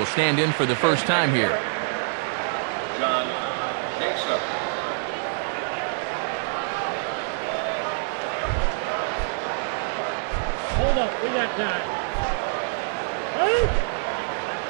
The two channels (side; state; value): left; silent; 61 dB below the other